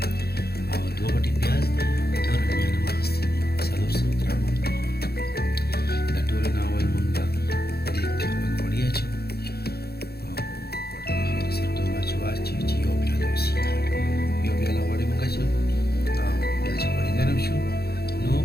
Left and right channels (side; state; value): right; late; 0.46 ms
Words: او دوه غټې پیاز دي، دوه رومیان هم اخیستي دي، 400 ګرامه. د ټولو نه اول مونږ دیګ کې خپل غوړي اچوو او غوړي سره ټول واچوو چې یو پیاله وسیږي. یو پیاله غوړي مونږ اچوو او بیا چې غوړي ګرم شو نو